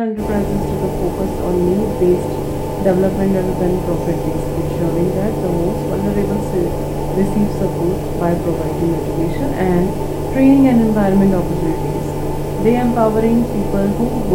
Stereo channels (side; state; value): both; identical; correlation 1.00